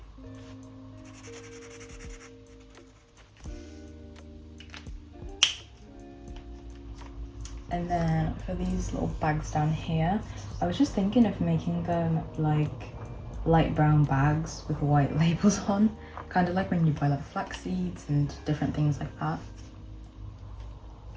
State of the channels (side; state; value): both; identical; correlation 1.00